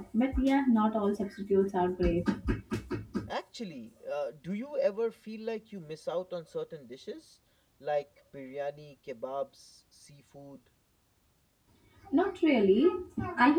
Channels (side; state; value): both; identical; correlation 1.00